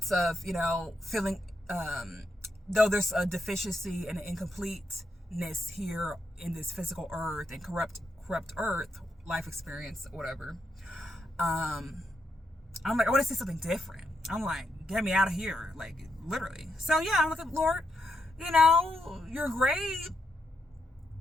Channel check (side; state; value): both; normal; correlation 0.81